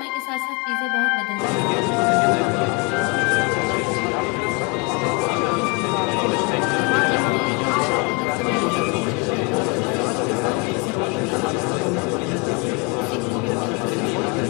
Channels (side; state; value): right; quieter; 31.4 dB